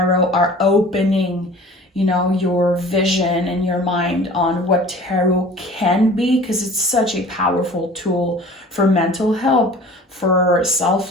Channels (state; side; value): normal; both; correlation 0.44